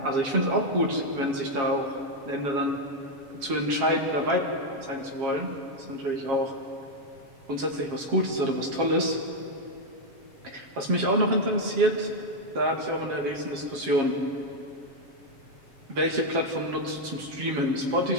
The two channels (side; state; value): left; late; 7.3 ms